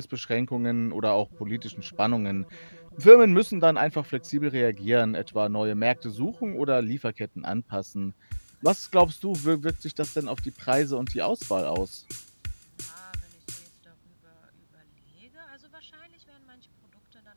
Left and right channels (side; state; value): both; inverted; correlation -1.00